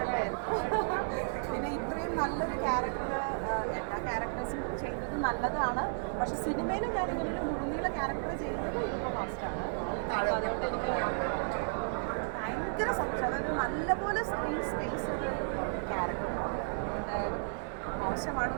പിന്നെ ഇത്രയും നല്ലൊരു ക്യാരക്ടർ എല്ലാ ക്യാരക്ടേഴ്സും ചെയ്തത് നല്ലതാണ്. പക്ഷെ സിനിമയിൽ ഞാൻ ഇങ്ങനെ ഒരു മുഴുനീള ക്യാരക്ടർ ചെയ്യുന്നത് ഇതിപ്പോൾ ഫസ്റ്റാണ്. അതുകൊണ്ട് എനിക്ക് ഭയങ്കര സന്തോഷം. അതായത് നല്ലപോലെ സ്ക്രീൻ സ്പേസ് ഒരു ക്യാരക്ടറാണ്.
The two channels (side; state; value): left; silent; digital silence